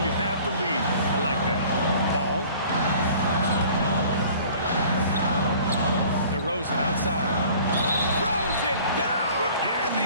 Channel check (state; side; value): inverted; both; correlation -0.49